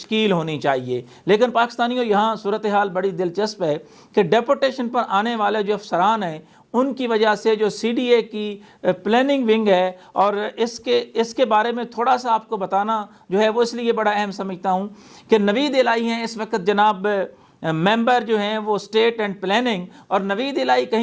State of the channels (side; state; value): both; identical; correlation 1.00